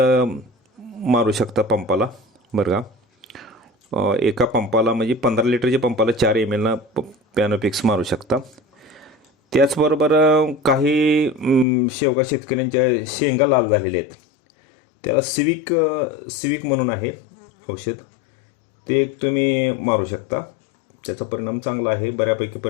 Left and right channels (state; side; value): drops out; right; at 11.7 s